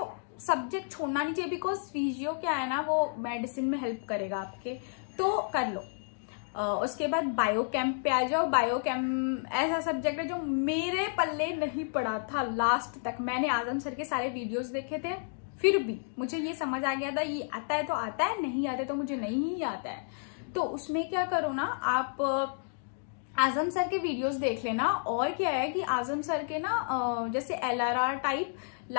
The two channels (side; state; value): right; silent; digital silence